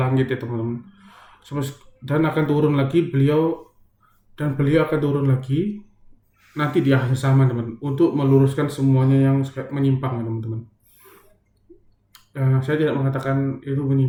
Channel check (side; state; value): both; identical; correlation 1.00